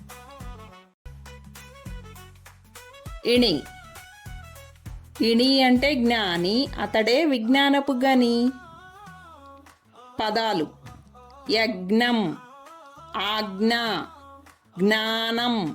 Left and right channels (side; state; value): both; identical; correlation 1.00